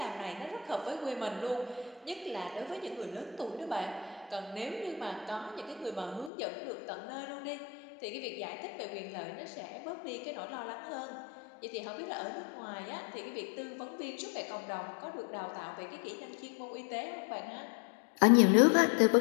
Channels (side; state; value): right; drops out; at 6.3 s